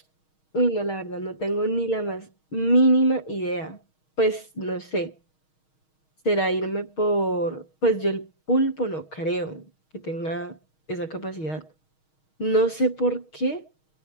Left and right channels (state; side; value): late; right; 6.4 ms